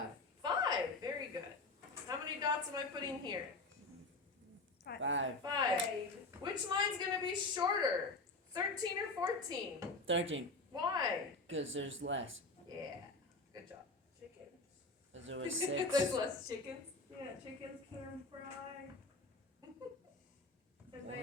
5. Very good. How many dots am I putting here? 5. 5. Which line's gonna be shorter? 13 or 14? 13. Why? Because there's less. Yeah. Good job. Chickens. Because there was There's 6. less chickens. Yeah, chickens can fry. And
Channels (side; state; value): right; quieter; 3.2 dB